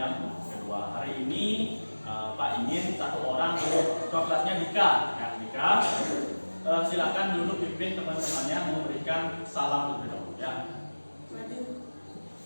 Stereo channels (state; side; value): inverted; both; correlation -1.00